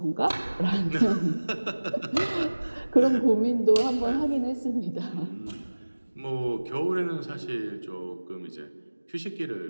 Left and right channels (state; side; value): inverted; both; correlation -1.00